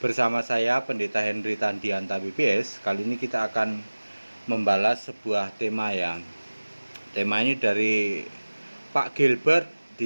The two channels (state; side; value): inverted; both; correlation -1.00